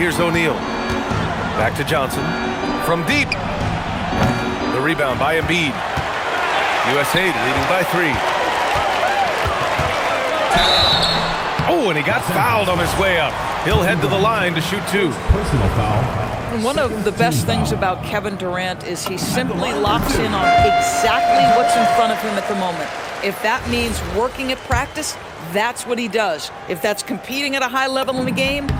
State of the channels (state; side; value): identical; both; correlation 1.00